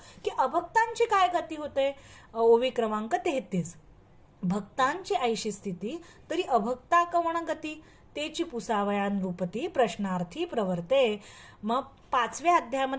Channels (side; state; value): both; identical; correlation 1.00